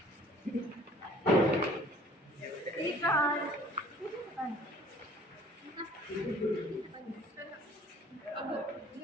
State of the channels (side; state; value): both; normal; correlation 0.53